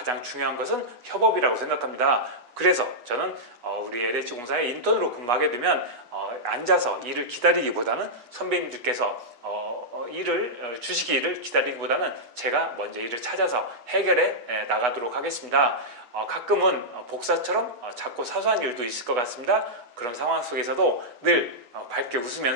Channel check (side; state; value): left; late; 8.2 ms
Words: 중요한 것은 협업이라고 생각합니다. 그래서 저는 우리 LH공사에 인턴으로 근무하게 되면 앉아서 일을 기다리기보다는 선배님들께서 일을 주시기를 기다리기보다는 제가 먼저 일을 찾아서 해결해 나가도록 하겠습니다. 가끔은 복사처럼 작고 사소한 일도 있을 것 같습니다. 그런 상황 속에서도 늘 밝게